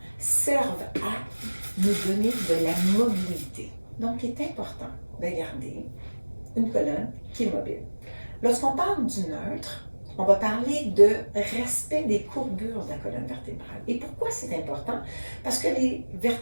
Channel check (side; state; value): both; inverted; correlation -1.00